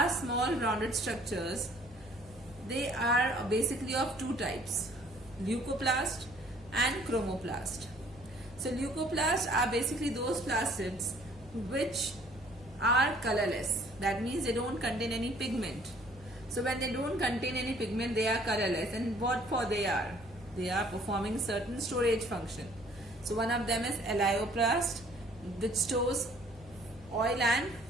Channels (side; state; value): both; normal; correlation 0.58